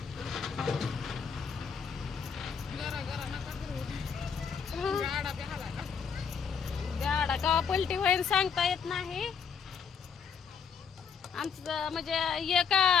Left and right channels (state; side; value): quieter; right; 6.6 dB